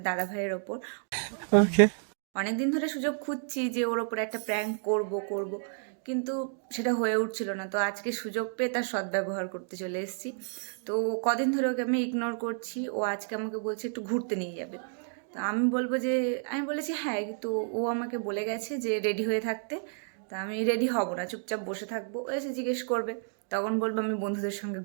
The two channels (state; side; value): silent; left; 57 dB below the other